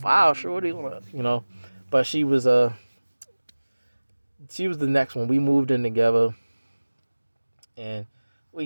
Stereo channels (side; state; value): both; inverted; correlation -1.00